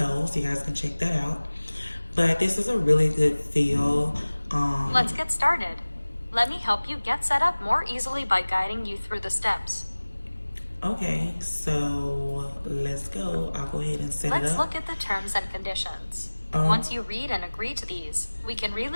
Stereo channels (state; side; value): inverted; both; correlation -1.00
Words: so you guys can check that out. But this is a really good feel. Let's get started. Let me help you get set up more easily by guiding you through the steps. Okay, so let's go. I'll go ahead and set it up. Let's look at the terms and conditions. Once you read and agree to these, we can